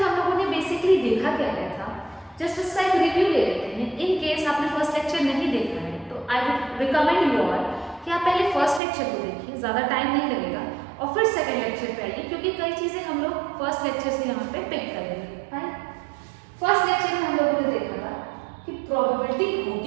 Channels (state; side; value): drops out; left; at 8.8 s